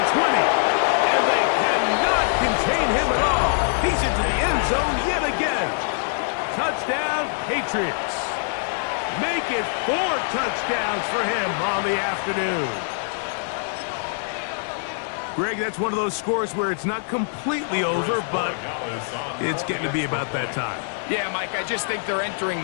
20. And they cannot contain him at all. He's into the end zone yet again. Touchdown, Patriots. Make it 4 touchdowns for him on the afternoon. Greg, that's one of those scores where it's not completely over, but it's getting to be about that time. Yeah, Mike, I just think they're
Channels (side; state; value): right; silent; digital silence